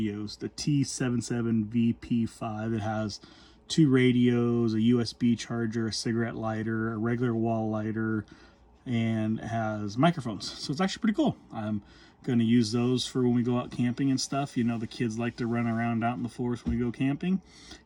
the T77VP5. It has 2 radios, a USB charger, a cigarette lighter, a regular wall lighter, and it has microphones. So it's actually pretty cool. I'm going to use those for when we go out camping and stuff. You know, the kids like to run around out in the forest when we go camping,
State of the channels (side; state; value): both; identical; correlation 1.00